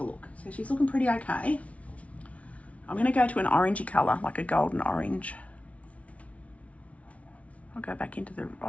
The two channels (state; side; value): late; right; 0.065 ms